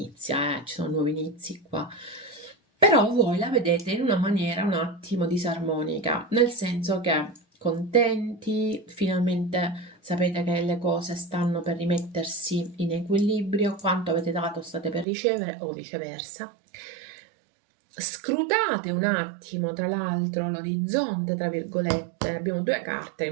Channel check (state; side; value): drops out; left; at 15.1 s